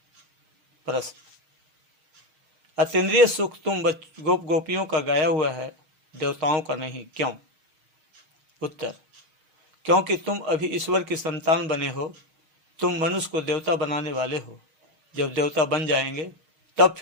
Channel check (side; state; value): left; late; 6.4 ms